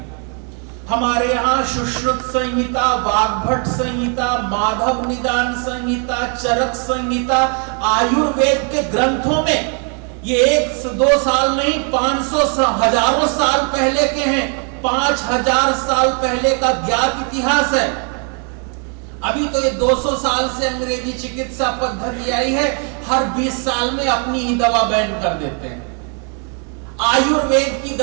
हमारे यहाँ सुश्रुत संहिता, वाग्भट संहिता, माधव निदान संहिता, चरक संहिता, आयुर्वेद के ग्रंथों में ये 1-2 साल नहीं, 500 हजारों साल पहले के हैं। 5000 साल पहले का ज्ञात इतिहास है। अभी तो ये 200 साल से अंग्रेजी चिकित्सा पद्धति आई है, हर 20 साल में अपनी ही दवा बैन कर देते हैं। आयुर्वेद की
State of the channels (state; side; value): quieter; left; 39.7 dB